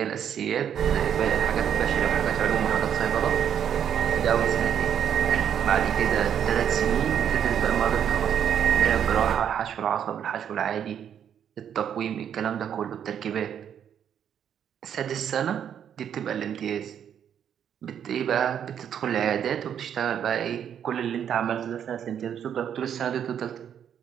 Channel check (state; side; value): quieter; left; 8.9 dB